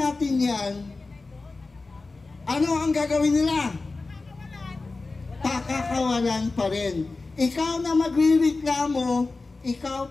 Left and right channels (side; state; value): right; quieter; 3.6 dB